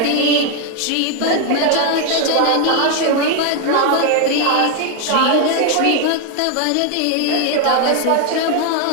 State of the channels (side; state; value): both; different; correlation 0.01